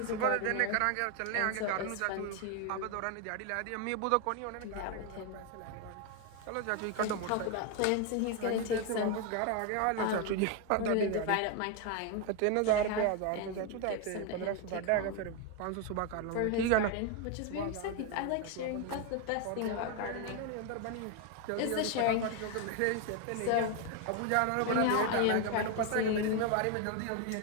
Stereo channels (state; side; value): different; both; correlation 0.01